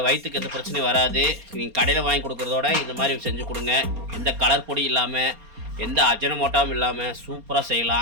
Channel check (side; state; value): left; late; 4.3 ms